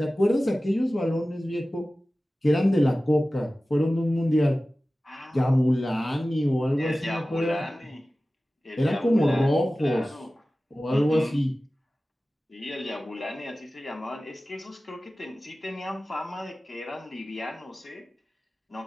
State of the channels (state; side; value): normal; both; correlation 0.96